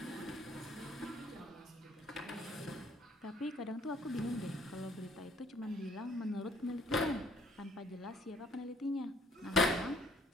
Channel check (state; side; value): normal; both; correlation 0.61